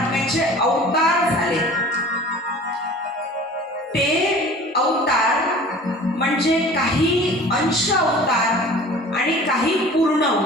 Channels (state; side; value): normal; both; correlation 0.44